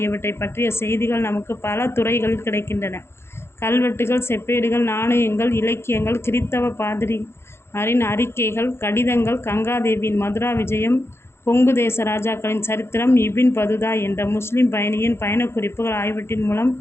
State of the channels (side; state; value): right; late; 0.12 ms